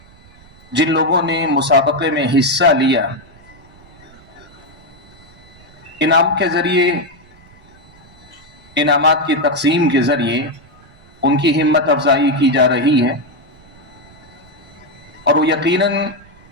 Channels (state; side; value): noise; right; rumble, 26 dB below the sound